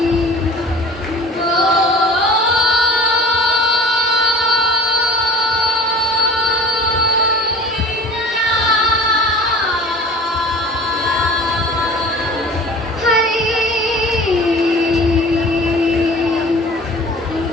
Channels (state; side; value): normal; both; correlation 0.42